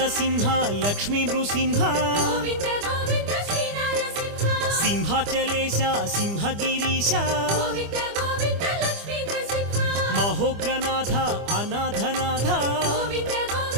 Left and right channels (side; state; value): left; late; 25 ms